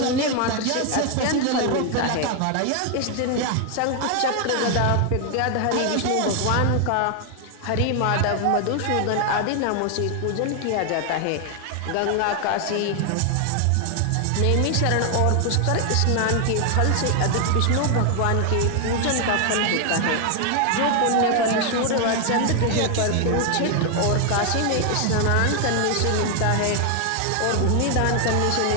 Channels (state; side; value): different; both; correlation 0.00